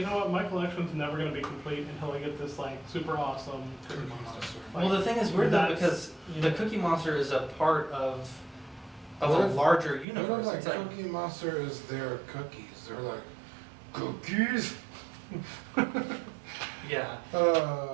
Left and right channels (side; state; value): left; drops out; at 10.1 s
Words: know what, my collection's never going to be complete until I get this like super awesome Cookie Monster. Well, the thing is weird though, That's- because the Cookie Monster is a part of a What if- larger What universe. if, like, It's like, Cookie Monster is their cookies? They're like, cookies? yeah.